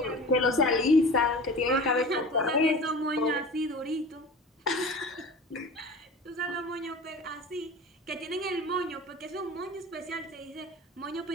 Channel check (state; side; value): normal; both; correlation 0.37